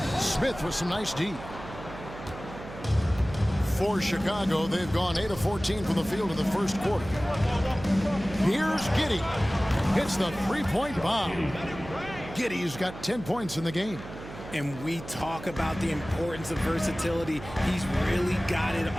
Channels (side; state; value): right; noise; hum, 13 dB below the sound